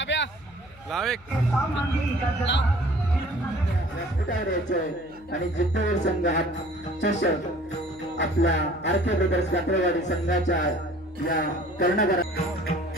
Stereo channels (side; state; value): left; noise; hum, 25 dB below the sound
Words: आणि जिद्दवर संघ हा चषक आपल्या आरके ब्रदर्स कात्रवाडी संघाच्या या कर्णधार